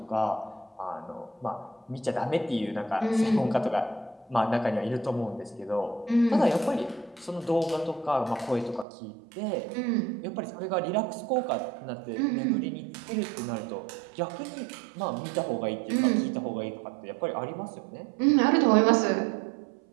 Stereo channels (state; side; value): drops out; left; at 8.8 s